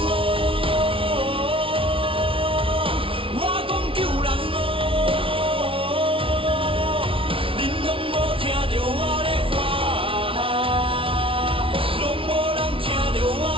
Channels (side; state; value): left; late; 0.26 ms